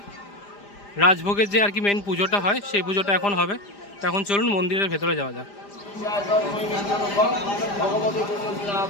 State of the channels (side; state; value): right; late; 5.0 ms